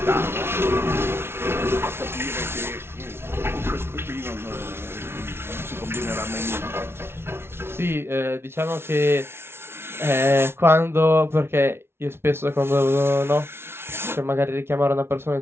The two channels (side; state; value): left; late; 0.12 ms